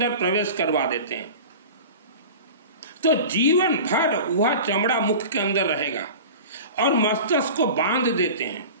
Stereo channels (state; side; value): inverted; both; correlation -0.35